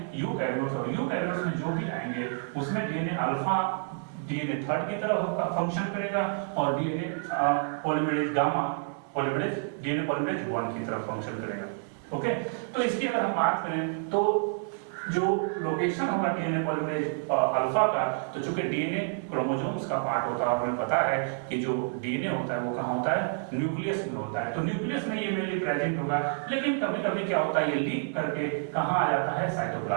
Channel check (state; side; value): silent; left; 57 dB below the other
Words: यूकैरियोट्स। और यूकैरियोट्स में जो भी आएंगे उसमें डीएनए अल्फा डीएनए थर्ड की तरह फंक्शन करेगा और DNA polymerase gamma polymerase DNA polymerase 1 की तरफ फंक्शन करेगा। ओके, तो इसकी अगर हम बात करें तो जो लोकेशन होगा डीएनए पॉलीमरेज अल्फा का, तो चूंकि डीएनए क्रोमोसोम्स का पार्ट होता है, हमें पता है कि जो डीएनए होता है वो कहाँ होता है, न्यूक्लियस में होता है। तो न्यूक्लियस में ये मेनली प्रेजेंट होगा, लेकिन कभी कभी क्या होता है, ये लीक करके कहाँ आ जाता है,